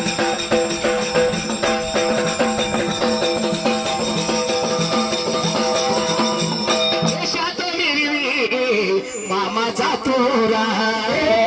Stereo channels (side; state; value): both; identical; correlation 1.00